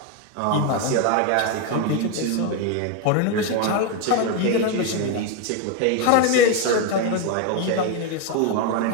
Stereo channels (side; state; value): both; different; correlation 0.02